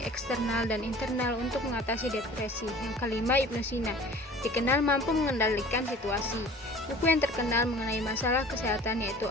eksternal dan internal untuk mengatasi depresi. Yang kelima, Ibnu Sina, dikenal mampu mengendalikan situasi. Buku yang terkenal mengenai masalah kesehatan yaitu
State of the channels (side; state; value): both; normal; correlation 0.45